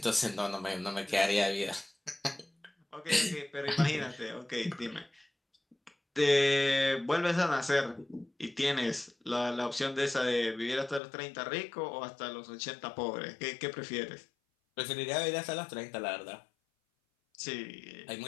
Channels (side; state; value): right; drops out; at 11.0 s